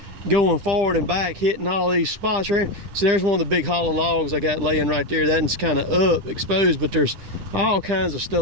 going forward and back, hitting all these spots right here. So there's one of the big hollow logs I got laying right there. That one's kind of up, exposed, but there's all kinds of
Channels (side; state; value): left; late; 10 ms